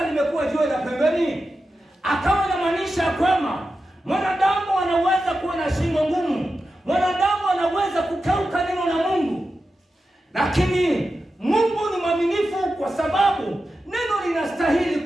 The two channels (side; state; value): both; normal; correlation 0.91